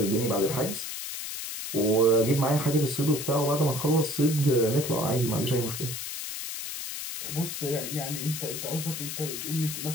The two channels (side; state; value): left; noise; hiss, 6 dB below the sound